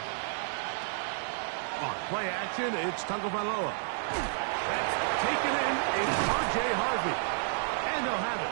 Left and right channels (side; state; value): left; silent; digital silence